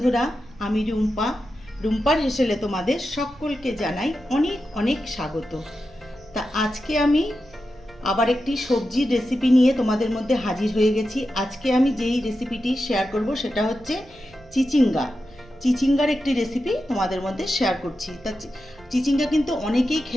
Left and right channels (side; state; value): right; noise; rumble, 25 dB below the sound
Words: আমি রুম্পা। রুম্পার হেসেলে তোমাদের সকলকে জানাই অনেক অনেক স্বাগত। তা আজকে আমি আবার একটি সবজির রেসিপি নিয়ে তোমাদের মধ্যে হাজির হয়ে গেছি। আজকে আমি যেই রেসিপিটি শেয়ার করব সেটা হচ্ছে চিচিঙ্গা। চিচিঙ্গার একটি রেসিপি তোমাদের মধ্যে শেয়ার করছি। তা চিচিঙ্গা কিন্তু অনেকেই